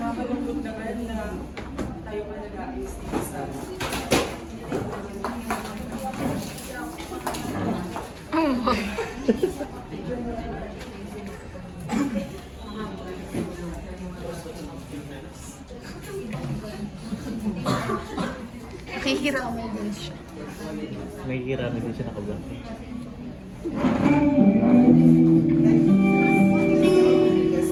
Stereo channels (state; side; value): identical; both; correlation 1.00